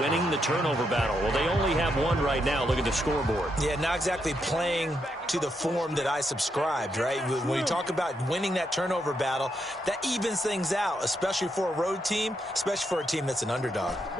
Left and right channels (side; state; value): both; normal; correlation 0.80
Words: winning the turnover battle. Well, they only have 1 right now. Look at the scoreboard. Yeah, not exactly playing to the form that I subscribed, right? When you talk about winning that turnover battle, that evens things out, especially for a road team, especially for a team that's an underdog. Let's